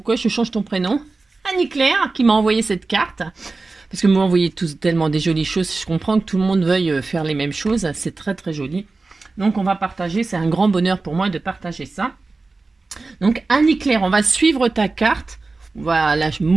je change ton prénom. Annie-Claire, qui m'a envoyé cette carte. Parce que vous m'envoyez tous tellement des jolies choses. Je comprends que tout le monde veuille faire les mêmes choses. C'est très joli. Donc, on va partager. C'est un grand bonheur pour moi de partager ça. Donc, Annie-Claire, on va suivre ta carte. On va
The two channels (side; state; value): left; quieter; 3.7 dB